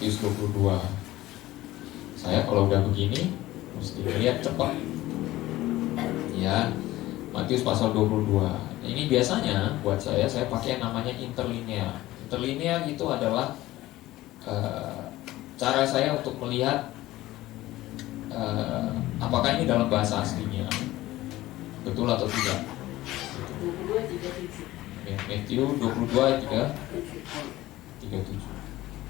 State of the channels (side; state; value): right; quieter; 16.7 dB